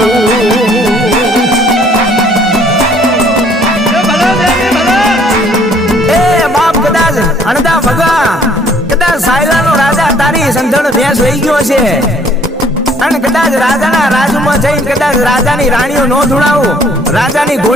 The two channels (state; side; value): normal; both; correlation 0.60